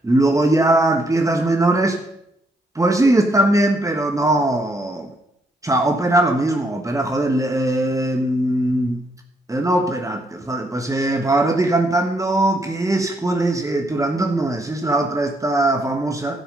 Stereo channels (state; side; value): normal; both; correlation 0.73